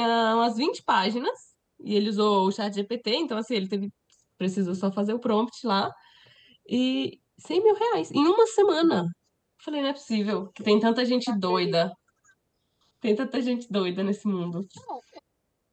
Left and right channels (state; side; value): identical; both; correlation 1.00